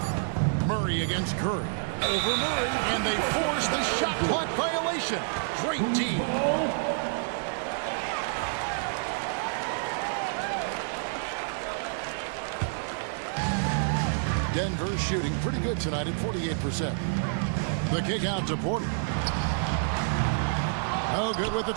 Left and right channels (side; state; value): left; silent; digital silence